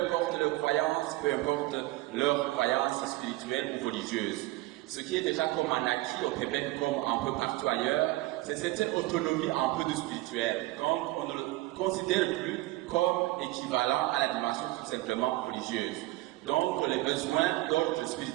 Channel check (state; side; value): quieter; left; 18.7 dB